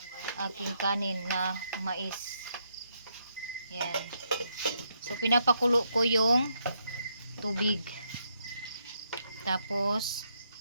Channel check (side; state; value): both; inverted; correlation -0.77